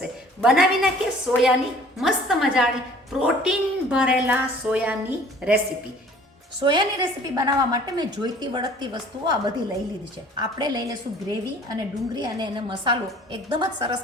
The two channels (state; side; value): normal; both; correlation 0.51